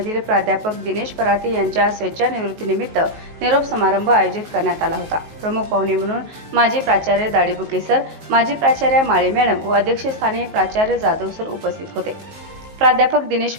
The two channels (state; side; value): late; left; 19 ms